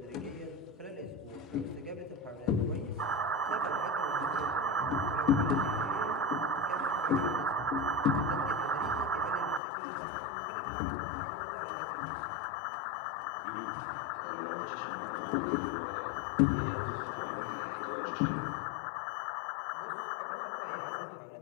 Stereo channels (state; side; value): drops out; right; at 9.6 s